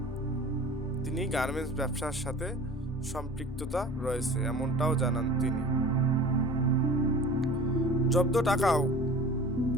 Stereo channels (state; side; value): normal; both; correlation 0.41